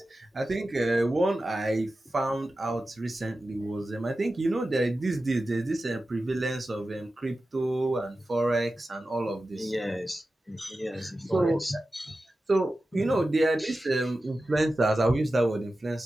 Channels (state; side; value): normal; both; correlation 0.94